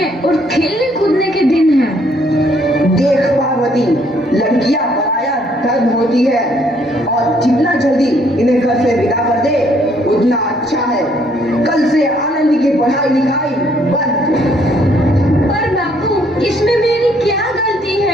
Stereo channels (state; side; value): normal; both; correlation 0.67